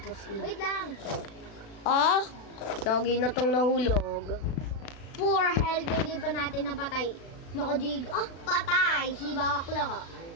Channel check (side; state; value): right; late; 36 ms